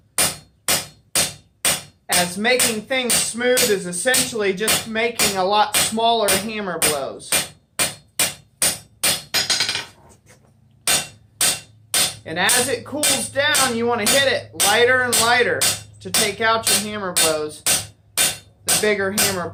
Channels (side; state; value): both; identical; correlation 1.00